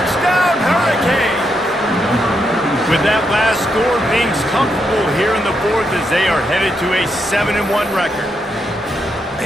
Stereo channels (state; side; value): normal; both; correlation 0.81